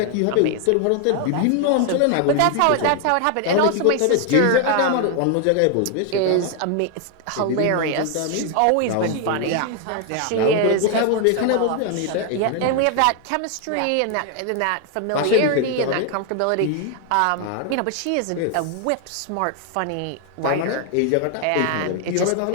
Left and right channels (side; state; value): both; different; correlation 0.01